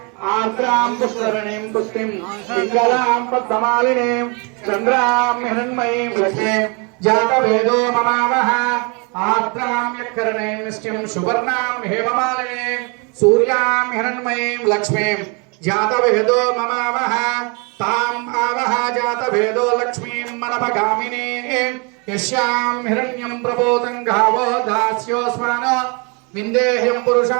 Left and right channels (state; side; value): quieter; left; 32.5 dB